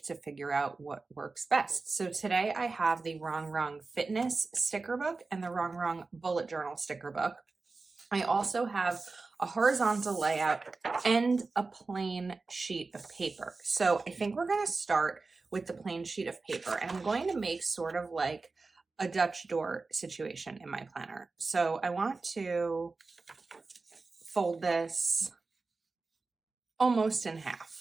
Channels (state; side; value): quieter; left; 3.9 dB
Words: to figure out what works best. So today I have the Wrong Wrong Fitness sticker book and the Wrong Wrong Bullet Journal sticker book. I also have a horizontal layout and a plain sheet of paper. So I think we're going to start with the plain sheet of paper, and I'm going to make sort of like a Dutch door situation in my planner. So I want to fold this almost in half.